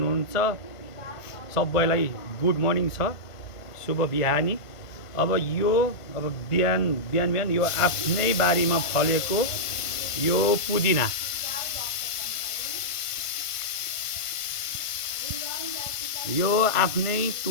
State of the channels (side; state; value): right; late; 1.5 ms